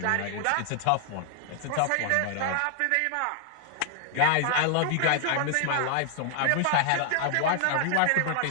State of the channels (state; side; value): different; both; correlation 0.00